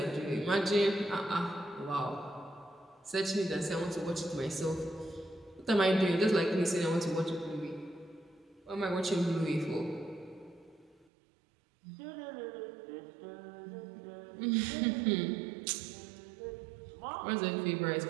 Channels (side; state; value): left; drops out; at 11.1 s